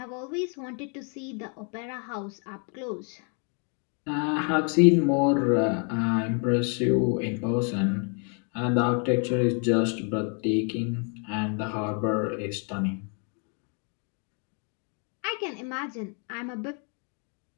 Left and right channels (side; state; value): right; quieter; 39.2 dB